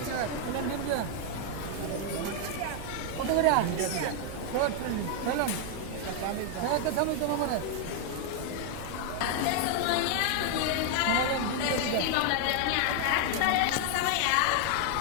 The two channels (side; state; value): both; different; correlation 0.00